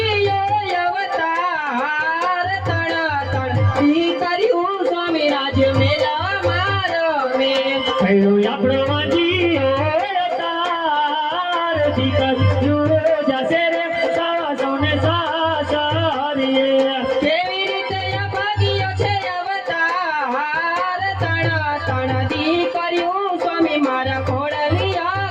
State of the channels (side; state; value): both; identical; correlation 1.00